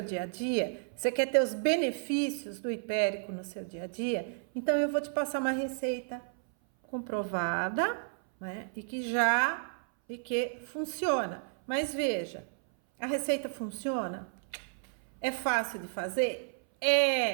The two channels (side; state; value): left; silent; 56 dB below the other